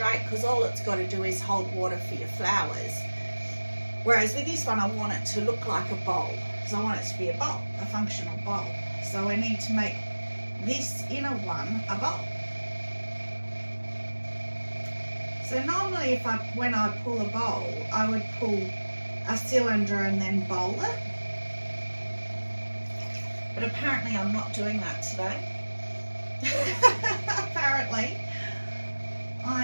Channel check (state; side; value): inverted; both; correlation -1.00